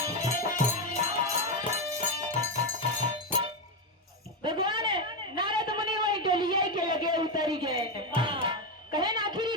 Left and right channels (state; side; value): normal; both; correlation 0.10